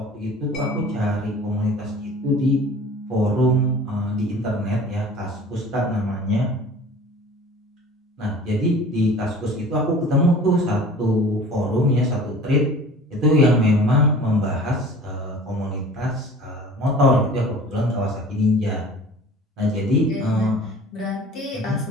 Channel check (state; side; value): normal; both; correlation 0.44